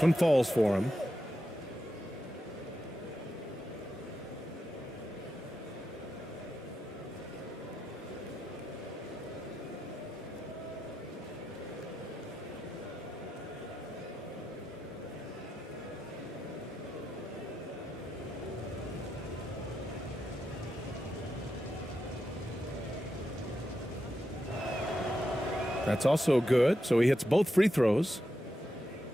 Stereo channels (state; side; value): normal; both; correlation 0.87